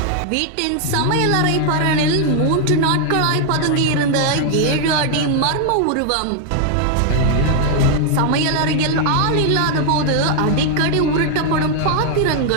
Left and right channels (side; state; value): both; different; correlation 0.00